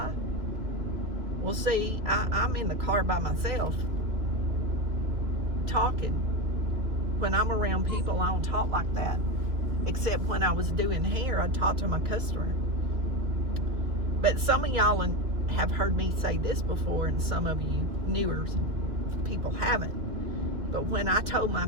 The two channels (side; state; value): left; late; 2.8 ms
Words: Well, see, I'm in the car by myself talking. When I'm around people, I don't talk like that. Except when I was doing hair, I talked to my customer. But some of y'all have heard me say this before, and some of you newer people haven't. But when I told my